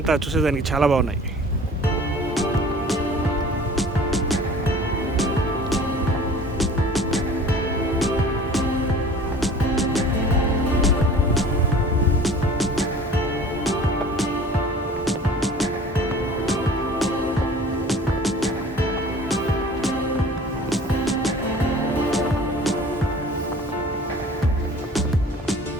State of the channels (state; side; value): normal; both; correlation 0.45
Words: చూసేదానికి చాలా బాగున్నాయి.